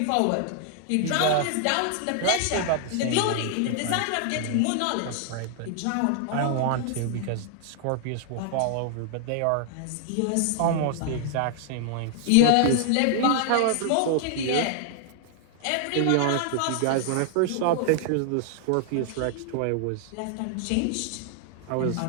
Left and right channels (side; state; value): both; different; correlation 0.00